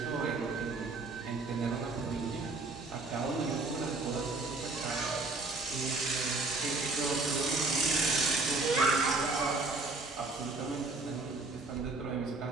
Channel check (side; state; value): left; quieter; 3.4 dB